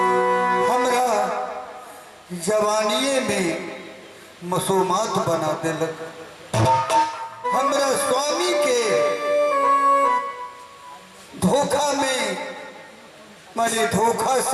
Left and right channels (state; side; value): identical; both; correlation 1.00